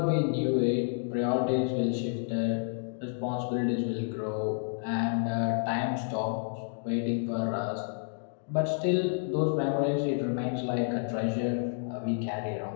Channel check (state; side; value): silent; right; digital silence